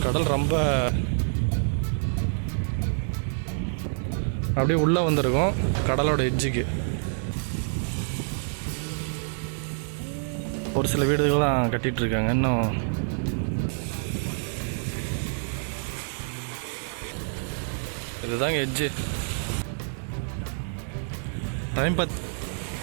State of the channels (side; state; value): left; silent; 60 dB below the other